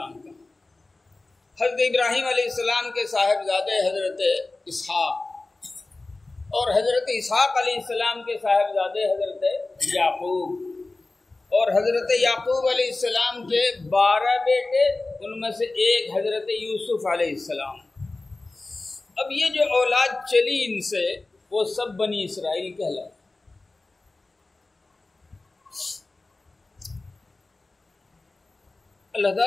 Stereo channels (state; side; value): quieter; right; 3.2 dB